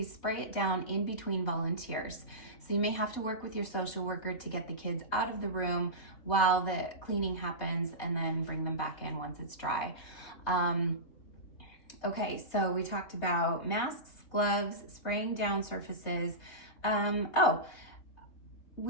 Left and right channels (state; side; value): late; right; 3.2 ms